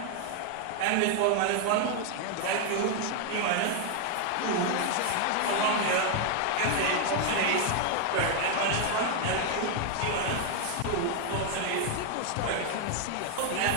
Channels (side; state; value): both; different; correlation 0.00